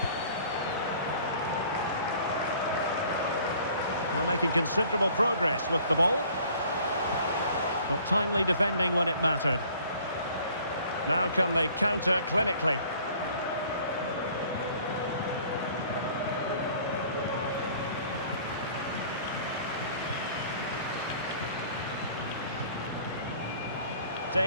Well, making considerable progress with the ball. But timely defending when it mattered. Now can they counter clinically?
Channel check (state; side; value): inverted; both; correlation -0.53